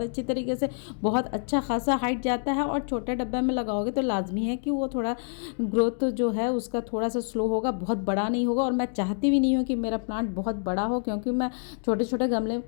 अच्छी तरीके से बहुत अच्छा खासा हाइट जाता है, और छोटे डब्बे में लगाओगे तो लाजमी है कि वो थोड़ा ग्रोथ जो है उसका थोड़ा सा स्लो होगा, बहुत बड़ा नहीं होगा। और मैं चाहती भी नहीं हूँ कि मेरा प्लांट बहुत बड़ा हो, क्योंकि मैं छोटे छोटे गमले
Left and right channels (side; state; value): right; silent; digital silence